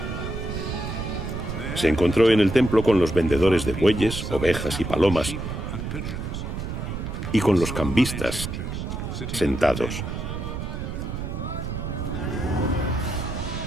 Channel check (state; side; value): noise; right; rumble, 5 dB below the sound